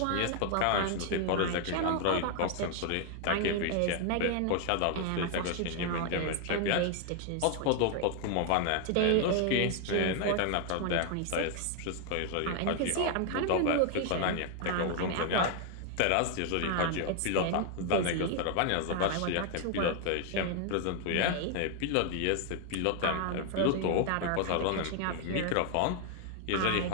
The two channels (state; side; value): different; both; correlation 0.00